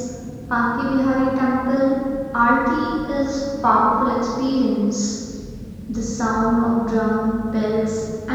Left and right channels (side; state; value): both; identical; correlation 1.00